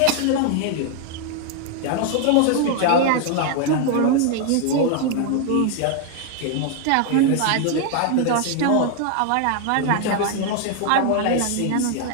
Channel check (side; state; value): both; different; correlation 0.00